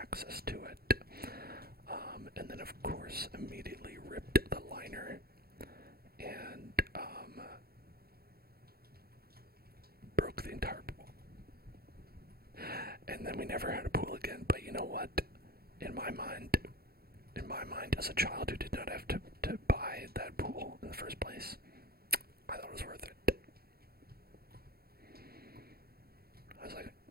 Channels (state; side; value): late; left; 0.45 ms